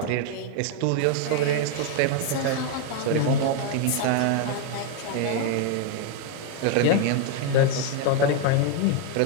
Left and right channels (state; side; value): different; both; correlation 0.01